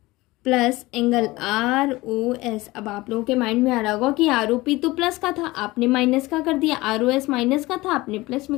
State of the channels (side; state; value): right; quieter; 20.3 dB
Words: plus angle ROS। अब आप लोगों के माइंड में आ रहा होगा कि ROP तो प्लस का था, आपने माइनस का कर दिया, ROS माइनस का था, आपने प्लस